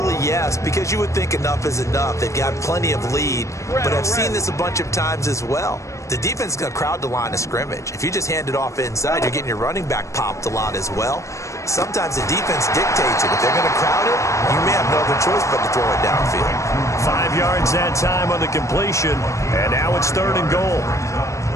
yes, because you would think enough is enough. They've got plenty of lead, but I've seen this a bunch of times as well. The defense is going to crowd the line of scrimmage. If you just hand it off inside, you're getting your running back popped a lot as well. Sometimes the defense dictates it. If they're going to crowd it, you may have no other choice but to throw it downfield. 5 yards that time on the completion, and now it's 3rd and goal.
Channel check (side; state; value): right; late; 0.15 ms